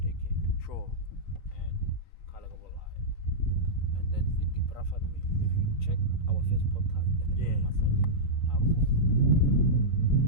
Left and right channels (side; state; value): right; late; 3.9 ms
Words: decade. Sure. And Kalagabo lie. And then it depraffered me. If you check our first podcast, Mahlanyeng,